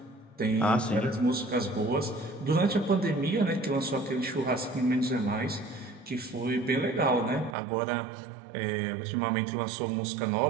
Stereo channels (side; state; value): left; drops out; at 7.6 s